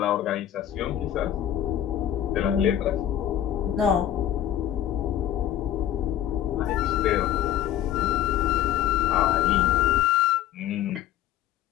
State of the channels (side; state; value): right; quieter; 11.5 dB